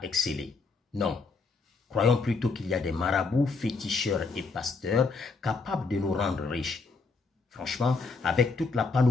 exceller. Non. Croyons plutôt qu'il y a des marabouts, féticheurs et pasteurs capables de nous rendre riches. Franchement, avec toute la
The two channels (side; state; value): right; quieter; 4.3 dB